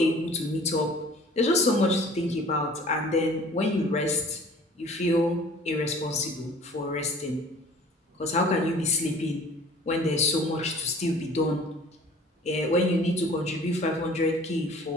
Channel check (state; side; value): normal; both; correlation 0.49